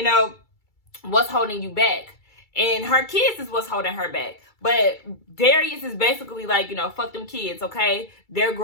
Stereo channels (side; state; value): right; late; 2.3 ms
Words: What's holding you back? And her kids is what's holding her back. But Darius is basically like, fuck them kids, okay? They're